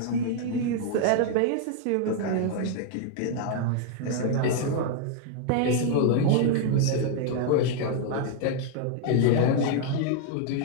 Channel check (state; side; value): different; both; correlation 0.00